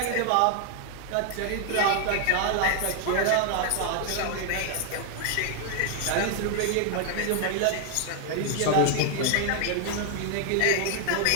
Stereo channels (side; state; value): both; different; correlation 0.00